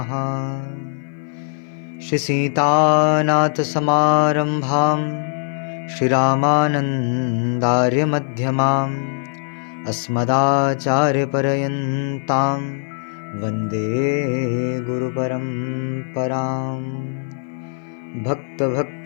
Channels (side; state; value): right; silent; 57 dB below the other